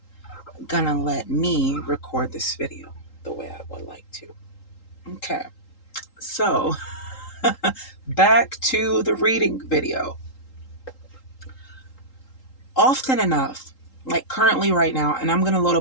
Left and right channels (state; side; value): late; right; 3.8 ms